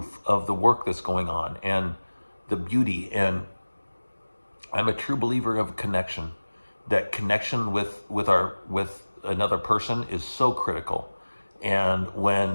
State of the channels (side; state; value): both; inverted; correlation -1.00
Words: of the work that's going on and the beauty. And I'm a true believer of connection. That connection with another person is so critical. And